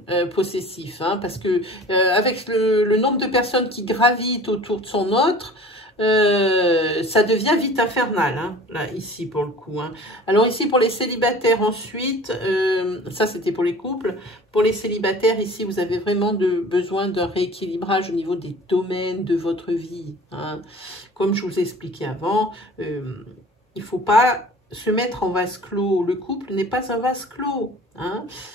possessif. Hein, parce que avec le nombre de personnes qui gravitent autour de son autre, ça devient vite infernal, hein, là, ici, pour le coup. Hein. Alors, ici, pour les célibataires, ensuite, ça, c'était pour les couples. Pour les célibataires, ici, vous avez vraiment besoin d'un rééquilibrage au niveau des domaines de votre vie. Hein. Comme je vous ai expliqué avant, il ne faut pas se mettre en vase clos. Le couple n'est pas un vase clos. Hein.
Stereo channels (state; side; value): normal; both; correlation 0.44